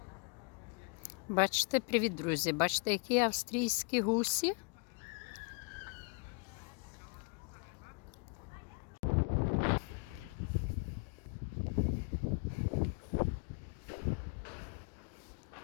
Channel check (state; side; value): quieter; right; 33.2 dB